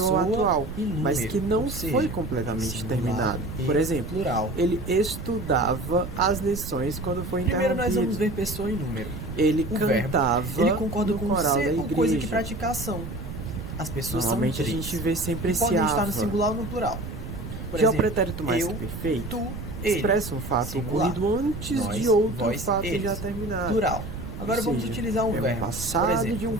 ao pessoa atual, e número, mas que não ou seja, foi completamente singular terminado. e Por exemplo, plural. ele estudava as lições quando foi Primeiro nós vamos interrompido. ver pessoa e número. Ele O verbo, cantava ele concorda no com coral da ser com coisa que igreja. pratica ação. As pessoas Normalmente são a três. gente vê sempre E esse podem estar no ava. singular ou no plural. Por Já o exemplo, pretérito mais eu, que perfeito tu, ele. expressa um fato Singular. ocorrido antes Nós, de outro vós, fato eles. já terminado. Plural. Agora Ou vamos seja, utilizar um é um verbo. passado Por exemplo, de um o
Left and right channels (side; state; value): right; noise; rumble, 8 dB below the sound